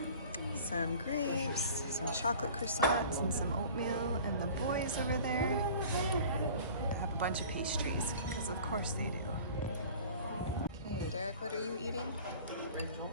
some grapes, some chocolate croissants, and some oatmeal, and the boys over there have a bunch of pastries, because of course they do. Okay, Derek, what are you eating?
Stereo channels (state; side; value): inverted; both; correlation -0.43